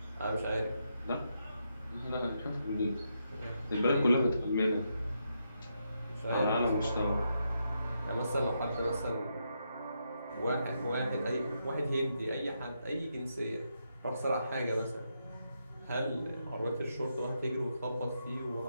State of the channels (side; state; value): both; inverted; correlation -0.81